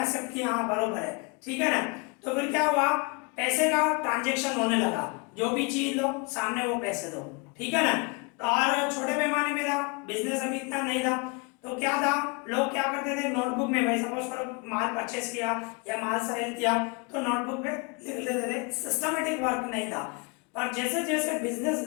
एक्सेप्ट किया, हाँ बरोबर है, ठीक है ना। तो फिर क्या हुआ, पैसे का ट्रांजेक्शन होने लगा, जो भी चीज लो सामने वो पैसे दो, ठीक है ना। और छोटे पैमाने में था, बिजनेस अभी इतना नहीं था, तो क्या था, लोग क्या करते थे, नोटबुक में, भाई सपोज करो माल परचेस किया या माल सेल किया तो नोटबुक में लिख लेते थे, सिस्टमेटिक वर्क नहीं था। पर जैसे जैसे बिजनेस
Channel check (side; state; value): right; quieter; 30.6 dB